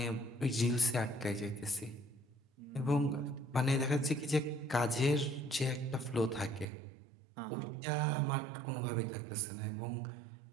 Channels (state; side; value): drops out; left; at 6.7 s